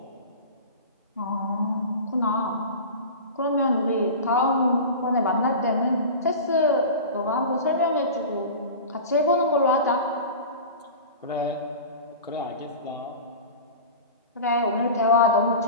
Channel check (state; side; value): inverted; both; correlation -0.32